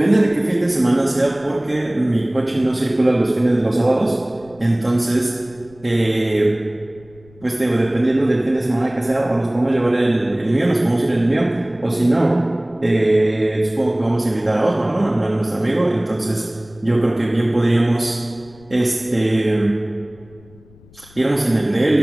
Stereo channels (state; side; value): noise; left; rumble, 26 dB below the sound